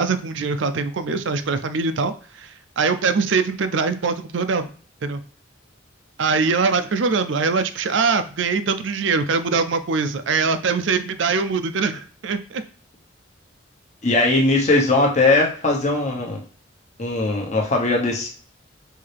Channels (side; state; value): both; normal; correlation 0.14